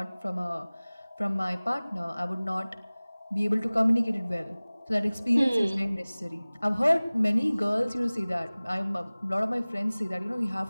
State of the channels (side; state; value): both; inverted; correlation -0.99